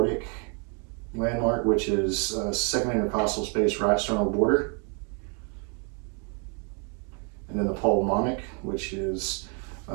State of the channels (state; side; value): quieter; left; 37.8 dB